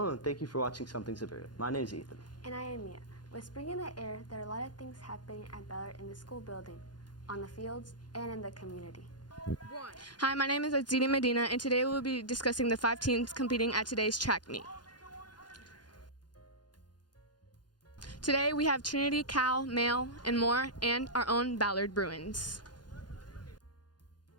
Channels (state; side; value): late; right; 0.70 ms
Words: and thank you for watching Something Superior. My name is Ethan. And I am Mia. With spring in the air, there are a lot of things happening at Ballard in the school building, on the fields, and in the community. Hi, my name is Azini Medina, and today we'll be discussing the 5 teams competing at today's track meet. Today we have Trinity, Cal, Male, and more, and our own Ballard Bruins.